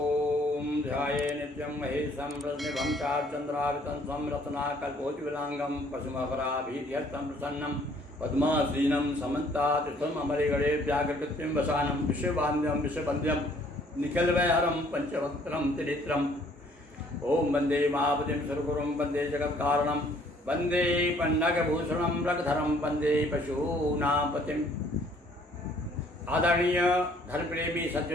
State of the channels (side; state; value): both; normal; correlation 0.60